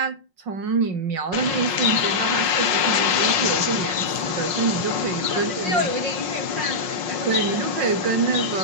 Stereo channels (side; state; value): left; late; 5.5 ms